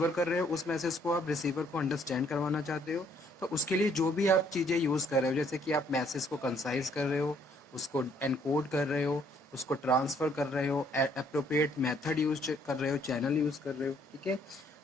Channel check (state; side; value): normal; both; correlation 0.65